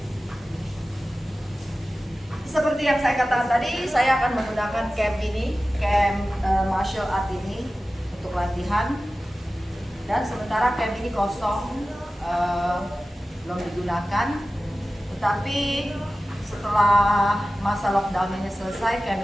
Seperti yang saya katakan tadi, saya akan menggunakan camp ini, camp martial art ini untuk latihan. Dan sementara camp ini kosong, belum digunakan. Tetapi setelah masa lockdown ini selesai,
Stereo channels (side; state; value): both; normal; correlation 0.95